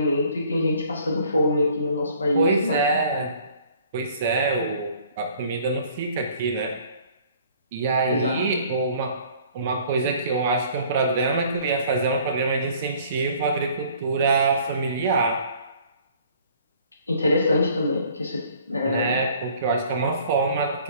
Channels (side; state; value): both; inverted; correlation -0.54